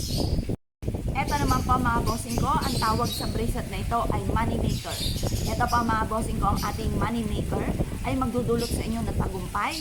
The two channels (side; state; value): both; identical; correlation 1.00